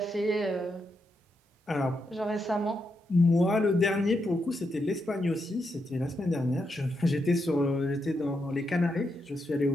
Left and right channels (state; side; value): normal; both; correlation 0.83